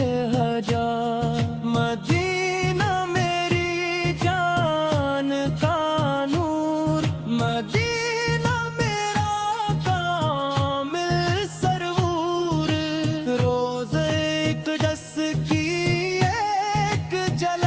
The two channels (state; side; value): identical; both; correlation 1.00